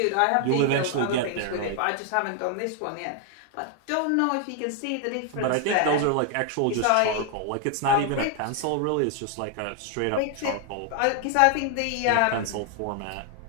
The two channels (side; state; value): both; different; correlation 0.00